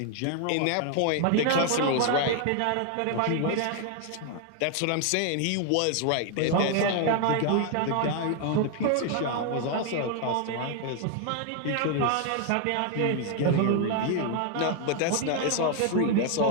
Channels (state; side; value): different; both; correlation 0.00